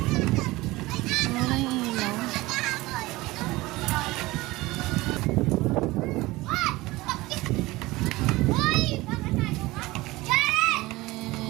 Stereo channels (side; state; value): left; quieter; 20.0 dB